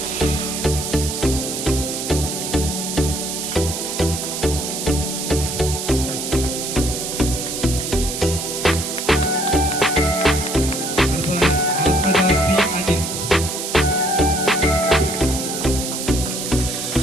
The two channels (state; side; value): noise; right; hiss, 4 dB below the sound